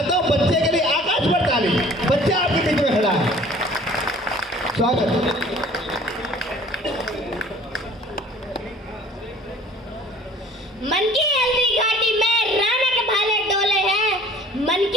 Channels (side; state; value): both; normal; correlation 0.50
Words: हूँ बच्चे के लिए आकाश पर ताली। बच्चा आपके बीच में खड़ा है, स्वागत। मन की हल्दी घाटी में राणा के भाले डोले हैं, मन